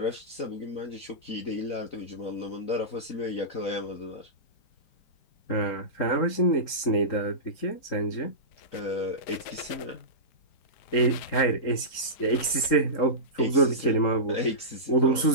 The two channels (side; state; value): right; late; 3.8 ms